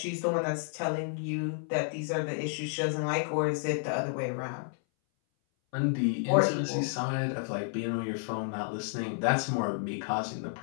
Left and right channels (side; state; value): right; silent; 57 dB below the other